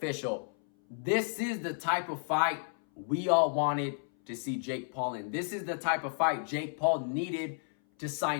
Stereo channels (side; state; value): right; silent; 56 dB below the other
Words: This is the type of fight we all wanted to see Jake Paul in. This is the type of fight Jake Paul needed to